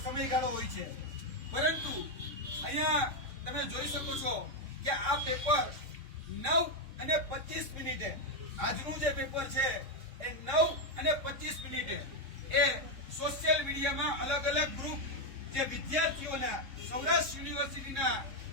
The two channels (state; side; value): late; left; 3.6 ms